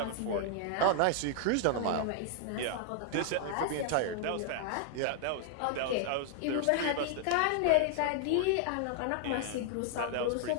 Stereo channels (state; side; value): different; both; correlation -0.01